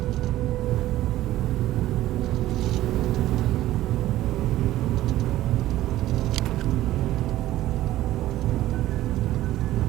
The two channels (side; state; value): left; quieter; 14.8 dB